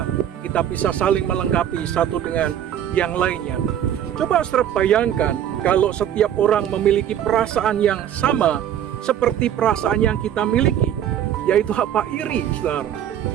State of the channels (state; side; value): quieter; left; 10.3 dB